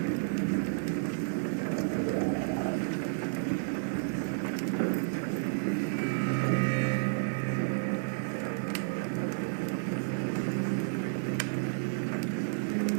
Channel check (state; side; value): silent; left; digital silence